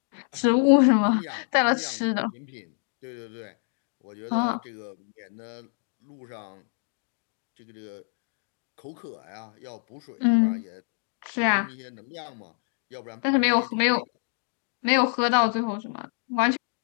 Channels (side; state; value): right; silent; digital silence